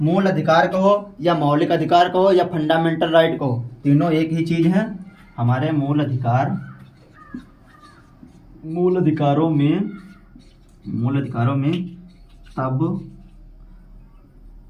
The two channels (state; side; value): identical; both; correlation 1.00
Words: कहो या मौलिक अधिकार कहो या फंडामेंटल राइट कहो, तीनों एक ही चीज है। हमारे मूल अधिकारों में